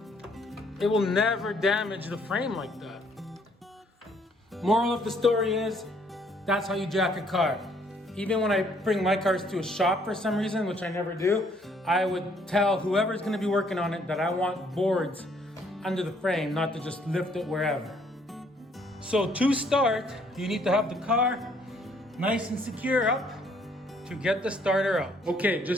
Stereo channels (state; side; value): normal; both; correlation 0.65